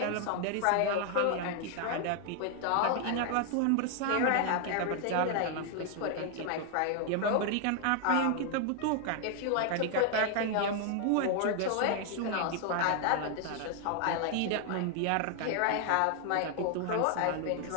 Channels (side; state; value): both; different; correlation 0.00